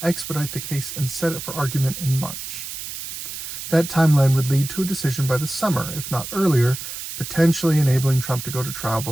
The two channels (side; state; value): right; noise; hiss, 8 dB below the sound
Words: expedite the case, and set it for argument in March. That timeline would lead to a decision by the summer, if not earlier, potentially enabling Trump to go to trial